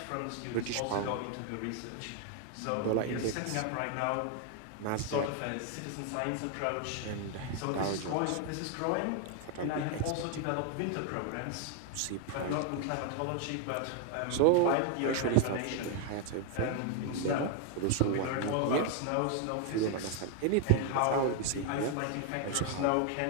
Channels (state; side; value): different; both; correlation 0.00